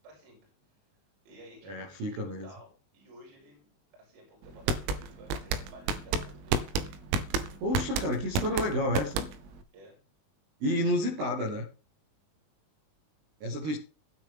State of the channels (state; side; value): late; left; 20 ms